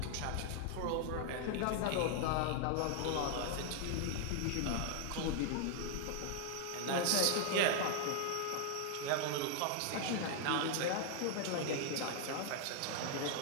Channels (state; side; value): different; both; correlation 0.00